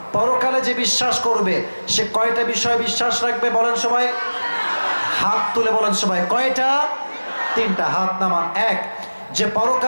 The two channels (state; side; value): inverted; both; correlation -1.00